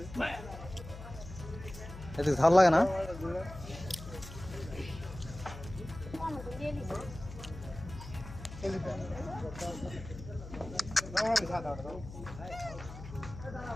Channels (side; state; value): left; noise; hum, 12 dB below the sound